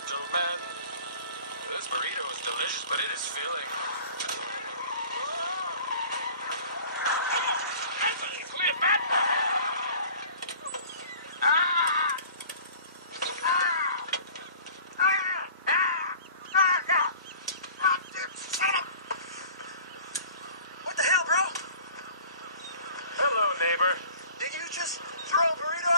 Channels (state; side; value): inverted; both; correlation -0.46